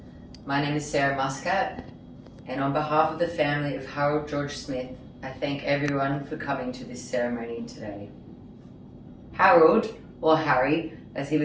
My name is Sarah Muscat, and on behalf of the family of Harold George Smith, I thank everyone for coming to this ceremony today. Harold, or Harry, as he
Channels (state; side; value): identical; both; correlation 1.00